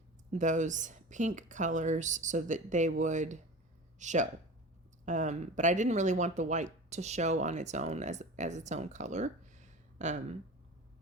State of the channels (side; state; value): both; normal; correlation 0.33